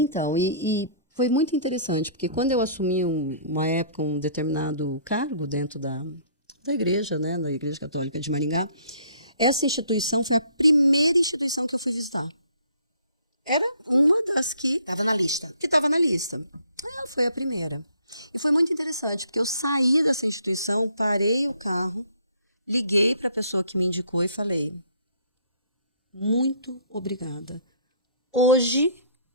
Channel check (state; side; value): inverted; both; correlation -0.58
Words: e foi muito interessante, porque quando eu assumi uma época um determinado cargo dentro da igreja, né, da Igreja Católica de Maringá, essa instituição foi a primeira instituição que eu fui visitar. Era uma das que Estava na lista. estava na lista. Ela foi a primeira. E foi muito interessante, porque eu saí dessa instituição, parei o carro, liguei para a pessoa que me indicou e falei: muito obrigada. Hoje